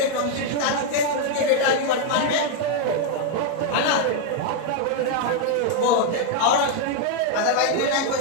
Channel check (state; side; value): different; both; correlation 0.00